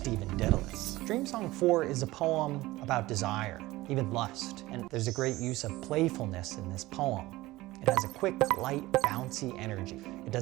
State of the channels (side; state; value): left; quieter; 18.5 dB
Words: Dedalus. Dream Song 4 is a poem about desire, even lust, and there's a great use of playfulness in this poem. It has a quick, light, bouncy energy. It